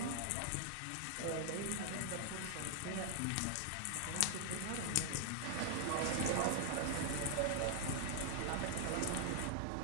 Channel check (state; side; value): different; both; correlation 0.00